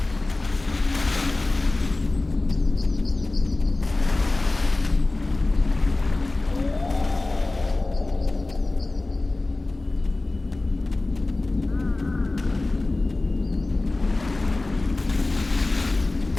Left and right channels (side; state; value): right; quieter; 3.0 dB